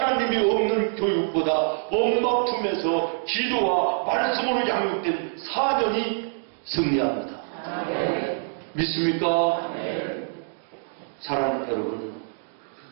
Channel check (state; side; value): silent; left; digital silence